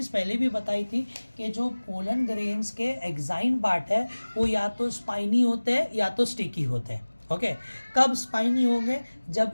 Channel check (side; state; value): both; inverted; correlation -1.00